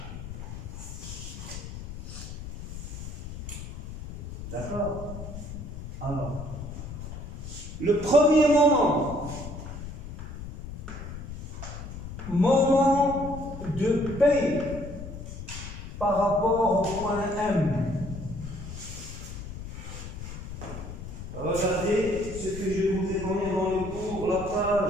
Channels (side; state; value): left; noise; rumble, 10 dB below the sound